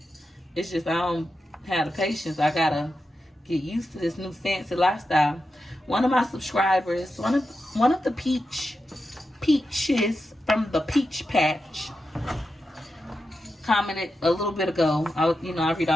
It's just, I don't have the patience. I gotta get used to this new fancy lifestyle. One of my subscribers, one of the peaches from the Peach Patch, commented a little bit ago. I read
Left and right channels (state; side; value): normal; both; correlation 0.89